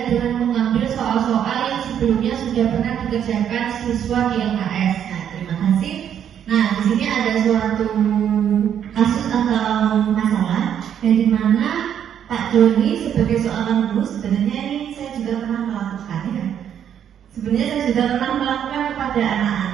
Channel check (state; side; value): quieter; left; 9.2 dB